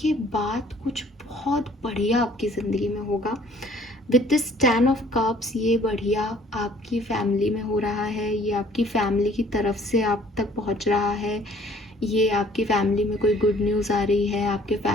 बाद कुछ बहुत बढ़िया आपकी ज़िंदगी में होगा। विद दिस 10 ऑफ कप्स, ये बढ़िया आपकी फैमिली में हो रहा है, ये आपकी फैमिली की तरफ से आप तक पहुंच रहा है, ये आपकी फैमिली में कोई गुड न्यूज़ आ रही है, आपके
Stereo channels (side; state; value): both; normal; correlation 0.57